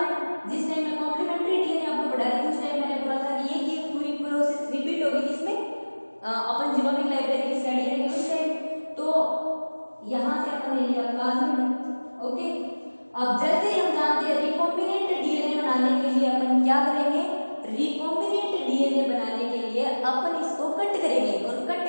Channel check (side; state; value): both; inverted; correlation -1.00